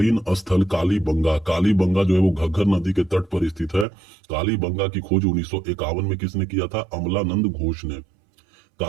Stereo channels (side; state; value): left; drops out; at 3.9 s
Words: स्थल कालीबंगा जो है वो घग्गर नदी के तट पर स्थित है। कालीबंगा की खोज 1951 में किसने किया था? अमलानंद घोष ने।